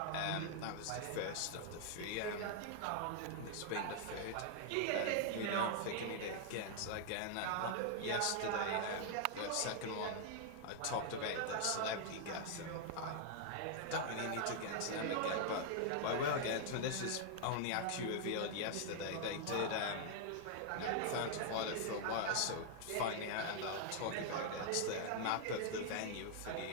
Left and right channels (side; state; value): both; different; correlation 0.00